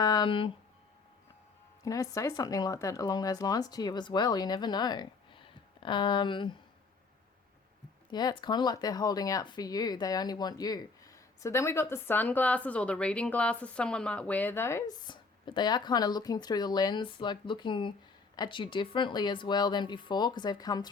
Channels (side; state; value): right; quieter; 4.3 dB